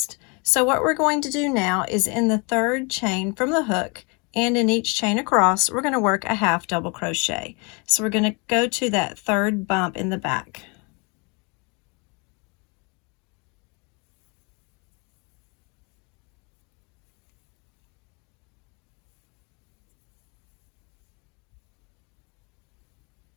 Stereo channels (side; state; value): right; quieter; 31.9 dB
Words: So what we're going to do now is in the third chain from the hook and in each chain across, we're going to work a half double crochet. So we're going to go to that third bump in the back.